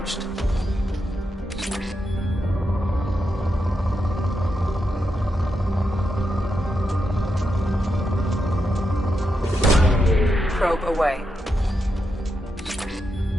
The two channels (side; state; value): both; normal; correlation 0.85